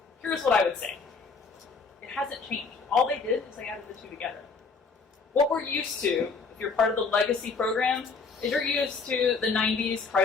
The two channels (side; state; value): right; quieter; 4.7 dB